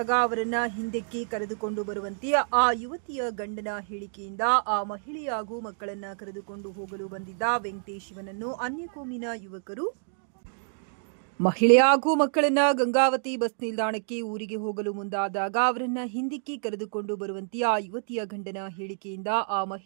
ಅವರನ್ನ ಹಿಂದಕ್ಕೆ ಕರೆದುಕೊಂಡು ಬರುವಂತೆ ಆ ಯುವತಿಯ ಗಂಡನ ಹೇಳಿಕೆಯಿಂದ ಆ ಮಹಿಳೆ ಹಾಗೂ ಮಕ್ಕಳನ್ನ ಕರೆದುಕೊಂಡು ಹೋಗಲು ಬಂದಿದ್ದ ವೆಂಕಟೇಶ್ ಇವನನ್ನು ಅನ್ಯಕೋಮಿನ ಯುವಕರು ಮಹಿಳೆ ಹಾಗೂ ಮಕ್ಕಳನ್ನ ಗಂಗಾವತಿ ಬಸ್ ನಿಲ್ದಾಣಕ್ಕೆ ಊರಿಗೆ ಹೋಗಲು ಮುಂದಾದಾಗ ಅವರನ್ನ ಹಿಂದಕ್ಕೆ ಕರೆದುಕೊಂಡು ಬರುವಂತೆ ಆ ಯುವತಿಯ ಗಂಡನ ಹೇಳಿಕೆಯಿಂದ ಆ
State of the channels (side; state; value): left; silent; 59 dB below the other